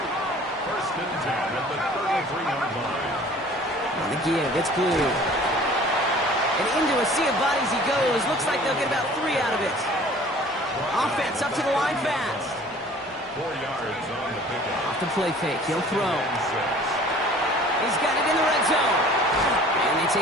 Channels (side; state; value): both; normal; correlation 0.49